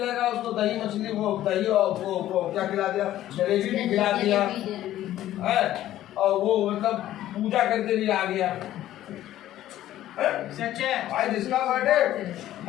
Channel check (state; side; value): quieter; right; 13.4 dB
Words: उसको दही मछली, वो दही और वो क्या खिला दिया, जलेबी भी खिला दिया है, और वो मतलब पूजा करके भी आ गया। सच है। भाई जिसका बर्थडे